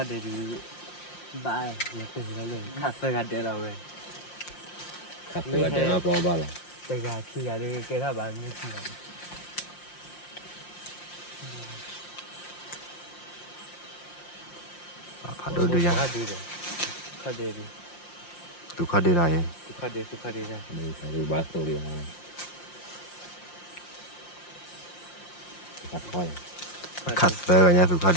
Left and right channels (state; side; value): late; right; 5.7 ms